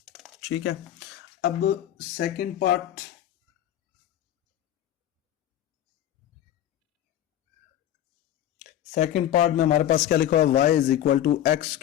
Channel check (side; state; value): right; quieter; 11.7 dB